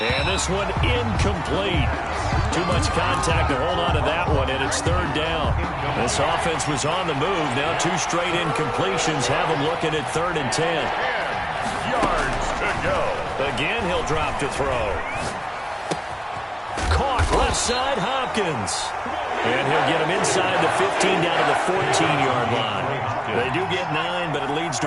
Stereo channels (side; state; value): both; identical; correlation 1.00